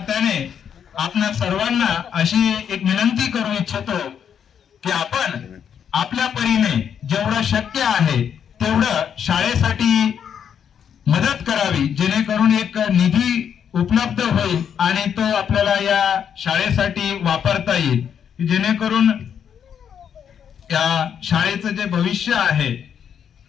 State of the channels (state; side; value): quieter; right; 8.2 dB